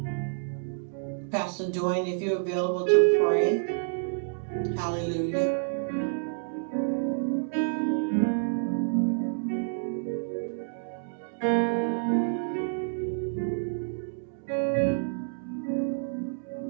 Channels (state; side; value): silent; left; digital silence